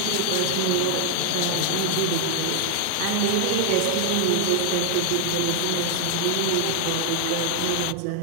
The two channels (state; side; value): different; both; correlation 0.00